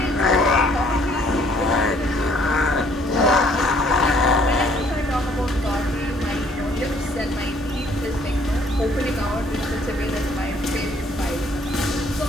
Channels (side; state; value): both; normal; correlation 0.62